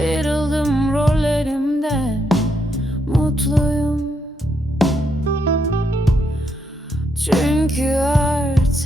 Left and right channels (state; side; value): normal; both; correlation 0.78